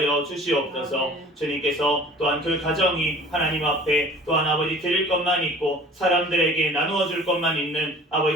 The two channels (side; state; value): both; normal; correlation 0.46